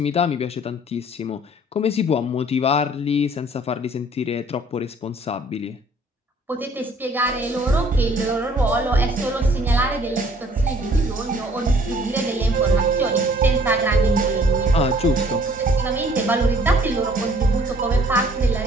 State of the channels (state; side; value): normal; both; correlation 0.58